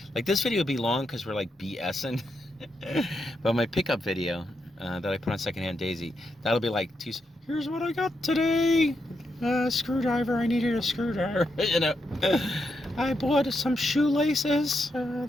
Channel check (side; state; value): both; normal; correlation 0.82